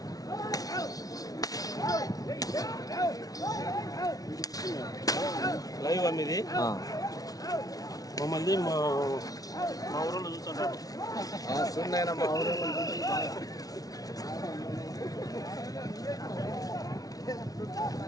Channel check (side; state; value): right; late; 0.18 ms